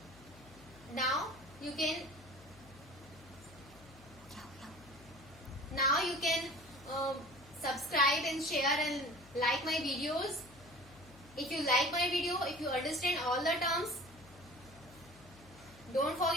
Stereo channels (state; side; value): noise; left; hum, 22 dB below the sound